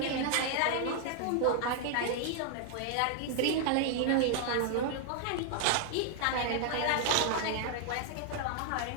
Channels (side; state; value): both; different; correlation 0.00